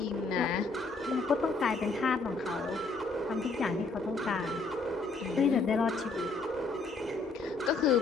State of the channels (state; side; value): quieter; right; 3.8 dB